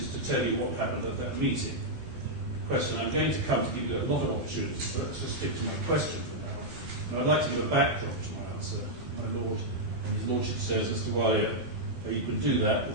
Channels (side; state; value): left; late; 12 ms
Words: to tell you what happened at that meeting. Question, I'm going to come to give you a lot of opportunities, so let's just stick to my question for now. And I'd like to give a backdrop to my answer, my lord. And his lordship says, Mr. Walia, you could do that, but